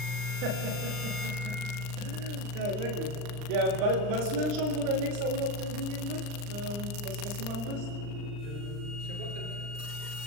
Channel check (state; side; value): late; left; 39 ms